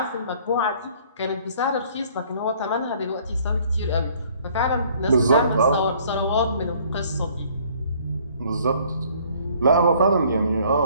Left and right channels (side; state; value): both; inverted; correlation -0.58